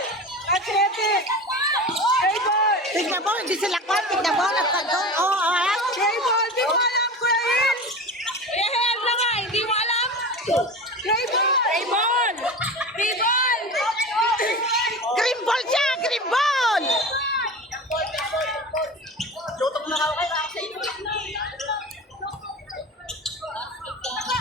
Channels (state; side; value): normal; both; correlation 0.30